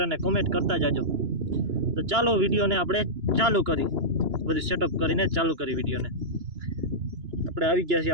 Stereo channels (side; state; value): left; late; 2.9 ms